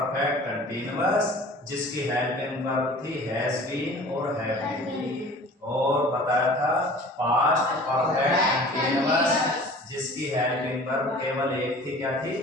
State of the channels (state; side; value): normal; both; correlation 0.45